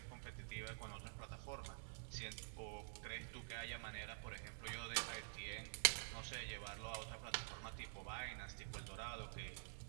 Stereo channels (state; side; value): silent; left; digital silence